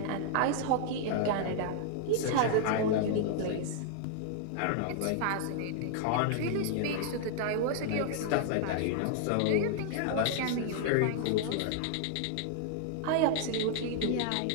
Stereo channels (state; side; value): different; both; correlation -0.01